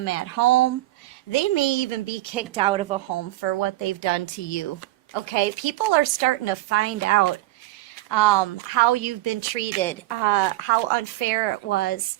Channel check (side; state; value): left; quieter; 16.9 dB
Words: at home. They may even be kicked out of a home for what they've done to you. Okay, people are starting to find out how you've been treated, how unfair it was.